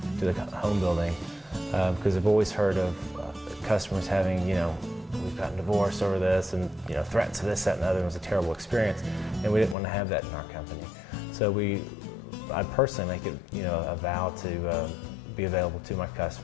to the home building because I've always heard of customers having, we've gotten divorced over this and, threats of this, that, and the other. It was a terrible experience. And we didn't want to have that in our company. So I personally make it, a vow to be available to my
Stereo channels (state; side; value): drops out; right; at 9.8 s